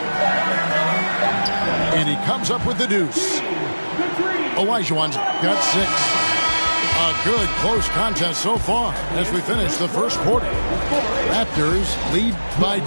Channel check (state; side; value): inverted; both; correlation -1.00